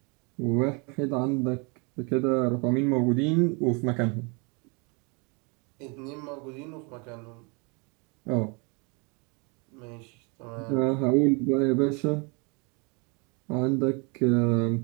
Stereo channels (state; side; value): quieter; left; 32.1 dB